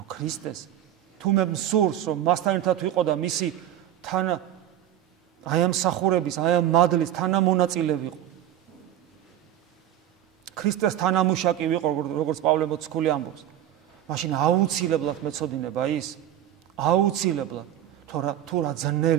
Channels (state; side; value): quieter; left; 11.8 dB